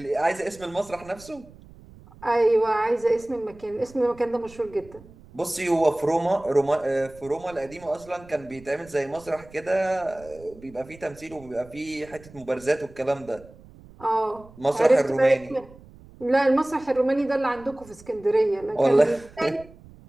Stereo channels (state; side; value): noise; right; rumble, 22 dB below the sound